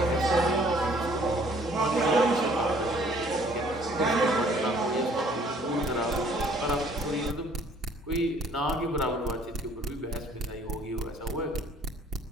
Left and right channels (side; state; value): both; normal; correlation 0.58